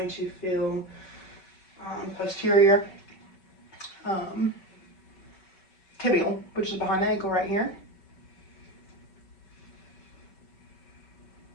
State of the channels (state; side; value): late; right; 5.2 ms